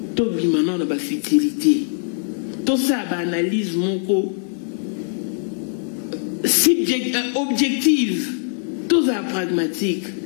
Tout maintenant dans la futilité. Tout ça, analyse mon objective. Tout ça pragmatique.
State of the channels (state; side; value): silent; right; digital silence